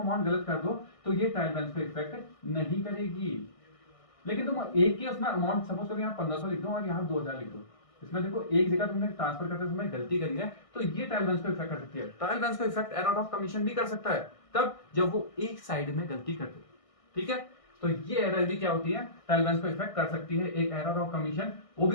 अमाउंट गलत कर दो तो ये ट्रायल बैलेंस को इफेक्ट नहीं करेगी। लेकिन तुम एक ही उसमें अमाउंट, सपोज करो यहाँ 1500 लिख दो और यहाँ 2000 लिख दो, इसमें देखो एक जगह तुमने ट्रांसफर करते समय गलती करी है तो ये ट्रायल बैलेंस को इफेक्ट कर सकती है। ट्रायल बैलेंस को इफेक्ट एरर ऑफ कमीशन भी कर सकता है, तब जब वो एक साइड में गलती करते, ठीक है। तो ये एरर भी क्या होती है, ट्रायल बैलेंस को इफेक्ट कर सकती है, एक एरर ऑफ कमीशन, वो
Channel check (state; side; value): late; right; 1.6 ms